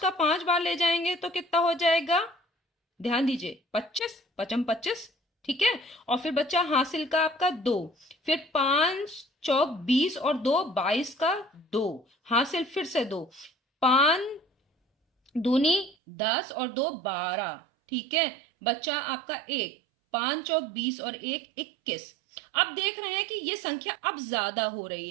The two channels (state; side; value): drops out; left; at 16.0 s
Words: पांच बार ले जाएंगे तो कितना हो जाएगा, ध्यान दीजिए, 25 पचम 25। ठीक है, और फिर बच्चा हासिल का आपका दो, फिर पांच चौक 20 और दो 22 का दो, हासिल फिर से दो, पांच दूनी 10 और दो 12। ठीक है, बच्चा आपका एक, पांच चौक 20 और एक 21। अब देख रहे हैं कि ये संख्या अब ज्यादा हो रही